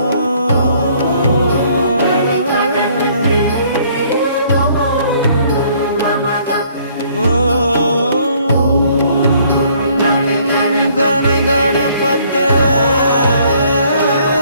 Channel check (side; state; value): both; inverted; correlation -0.61